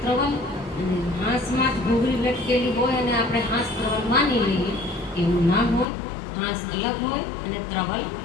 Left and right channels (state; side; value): drops out; right; at 5.9 s